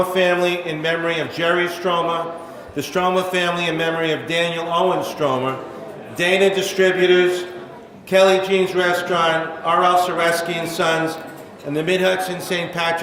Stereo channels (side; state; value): both; identical; correlation 1.00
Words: family in memory of Jerry Stroma, the Stromer family in memory of Daniel Owen Stromer, Dana Distributors, Kelly Jean's Restaurant, R.L. Sereski and Sons, and the Mid-Hudson St.